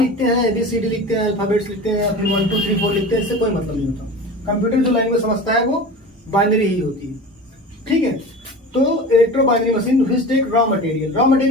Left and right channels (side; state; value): both; normal; correlation 0.34